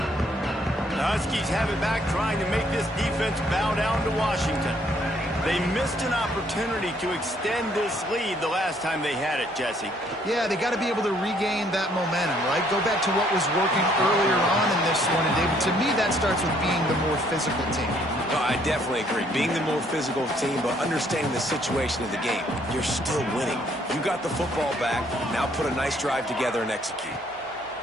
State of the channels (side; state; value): both; normal; correlation 0.66